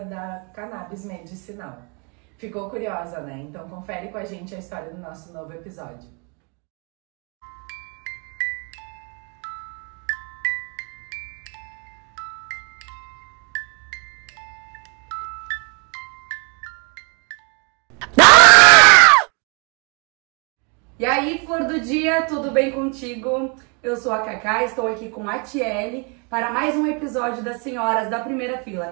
da cannabis medicinal. Ficou curiosa, né? Então confere com a gente a história do nosso novo episódio. E aí, flor do dia, tudo bem contigo? Eu sou a Cacá, estou aqui com a Tiele para mais um episódio das Senhoras da Primeira Fila.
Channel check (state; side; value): quieter; left; 34.4 dB